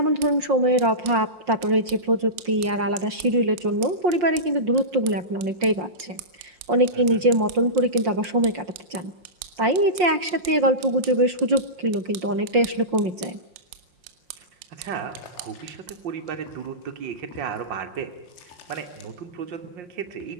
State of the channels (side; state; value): left; late; 5.6 ms